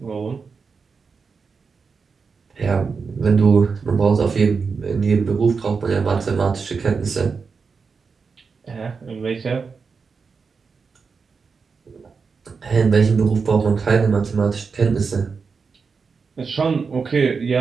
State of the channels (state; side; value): quieter; left; 5.2 dB